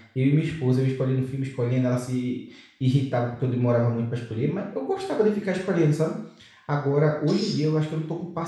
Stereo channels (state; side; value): identical; both; correlation 1.00